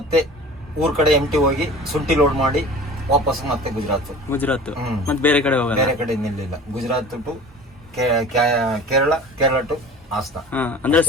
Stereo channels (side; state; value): both; normal; correlation 0.40